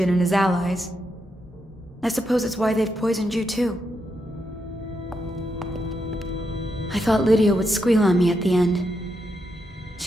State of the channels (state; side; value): normal; both; correlation 0.83